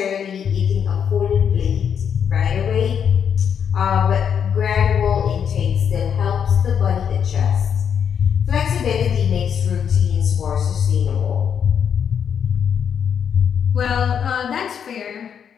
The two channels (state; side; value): quieter; right; 7.8 dB